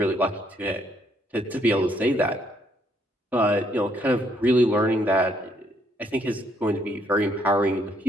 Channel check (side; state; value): both; normal; correlation 0.70